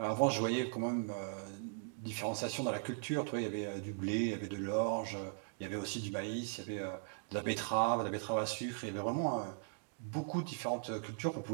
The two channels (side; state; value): left; silent; digital silence